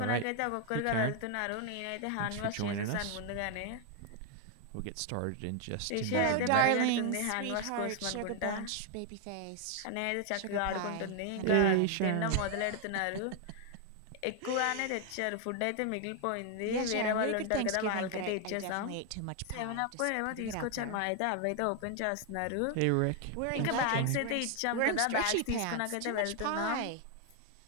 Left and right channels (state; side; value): different; both; correlation 0.00